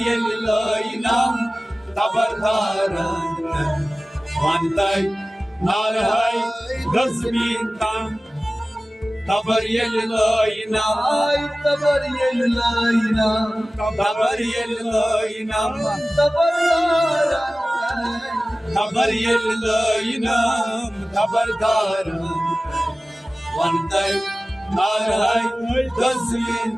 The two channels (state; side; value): normal; both; correlation 0.97